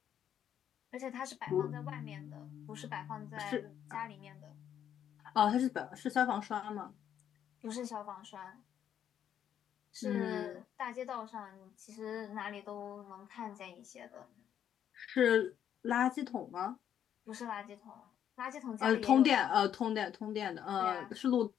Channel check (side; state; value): right; quieter; 9.7 dB